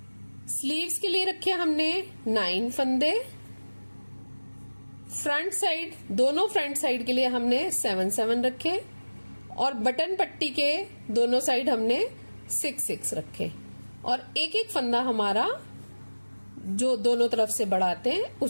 स्लीव्स के लिए रखे हमने 9 फंदे, फ्रंट साइड दोनों फ्रंट साइड के लिए हमने 7 रखे और बटन पट्टी के दोनों साइड हमने 6 रखे। और एक एक फंदा हमारा जो दोनों तरफ से बढ़ाते हैं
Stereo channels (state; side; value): inverted; both; correlation -1.00